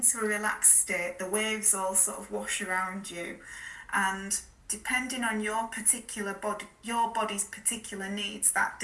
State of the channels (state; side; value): identical; both; correlation 1.00